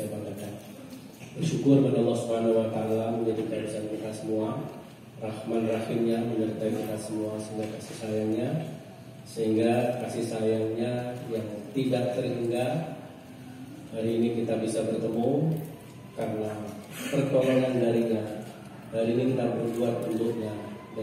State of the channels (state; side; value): identical; both; correlation 1.00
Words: banggakan. Bersyukur pada Allah Subhanahu wa Ta'ala menjadikan kita semua, Rahman Rahimnya menyertai kita semua, sehingga kasih sayangnya yang tidak terhingga hari ini kita bisa bertemu karena pertolongan darinya. Hari ini kita berbuat untuknya